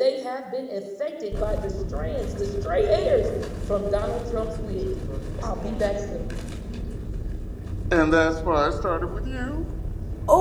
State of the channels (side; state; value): both; identical; correlation 1.00